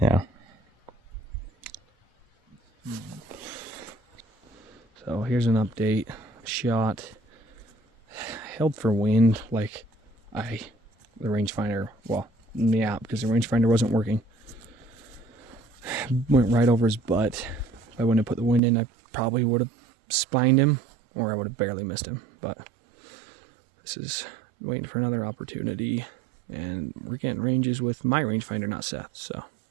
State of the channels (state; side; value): drops out; left; at 18.6 s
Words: yeah. So here's an update. Shot. Held for wind, like the rangefinder, well, in the app, because the rangefinder wasn't working. Went right over his butt. If I wouldn't have put the wind in, I probably would have spined him, or I would have barely missed him. But this is waiting for another opportunity, and we're getting ranges with my rangefinder, not Seth. So